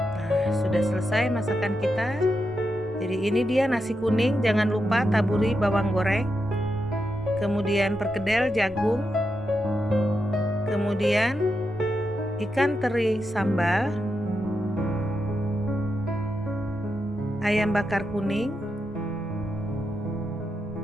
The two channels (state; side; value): normal; both; correlation 0.86